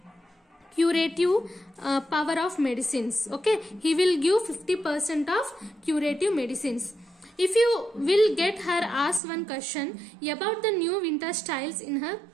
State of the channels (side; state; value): left; drops out; at 9.2 s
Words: curative power of medicines. Okay, he will give 50% of curative medicines. If you will get her ask one question about the new winter styles in her